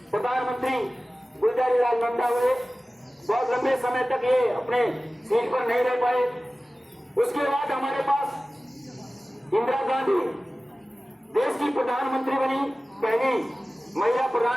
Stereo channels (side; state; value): both; normal; correlation 0.97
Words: प्रधानमंत्री गुलजारीलाल नंदा हुए, बहुत लंबे समय तक ये अपने सीट पर नहीं रह पाए। उसके बाद हमारे पास इंदिरा गांधी देश की प्रधानमंत्री बनी, पहली महिला